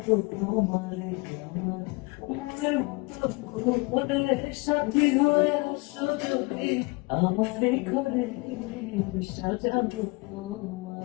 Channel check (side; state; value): right; quieter; 26.9 dB